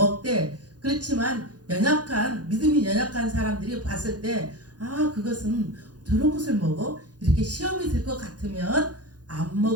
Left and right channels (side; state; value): left; late; 0.69 ms